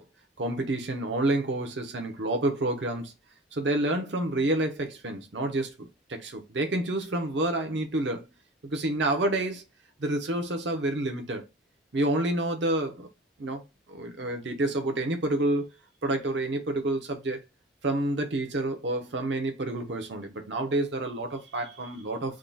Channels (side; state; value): both; normal; correlation 0.37